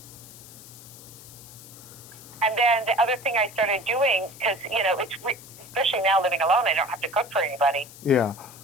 And then the other thing I started doing, because, it's especially now living alone, I don't have to cook for anybody. Yeah.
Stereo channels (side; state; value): left; noise; hiss, 18 dB below the sound